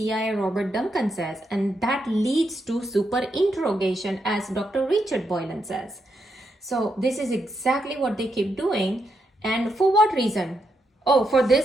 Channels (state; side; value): normal; both; correlation 0.81